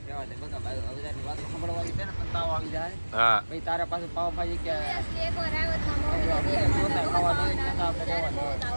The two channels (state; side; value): inverted; both; correlation -1.00